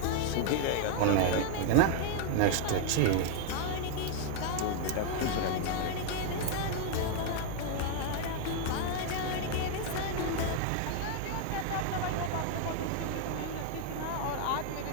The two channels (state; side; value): different; both; correlation 0.00